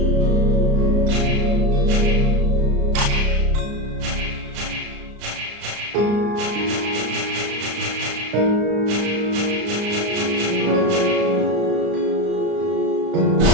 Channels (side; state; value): left; late; 34 ms